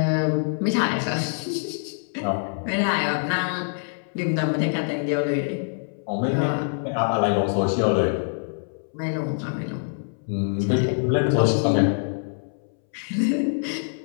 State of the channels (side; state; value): right; silent; 62 dB below the other